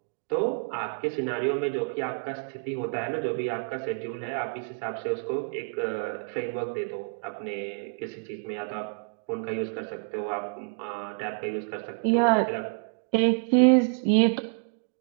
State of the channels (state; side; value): silent; left; digital silence